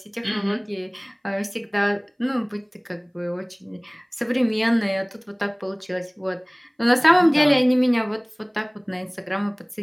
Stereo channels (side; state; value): both; identical; correlation 1.00